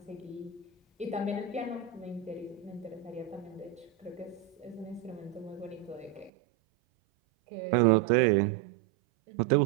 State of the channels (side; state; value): left; drops out; at 6.3 s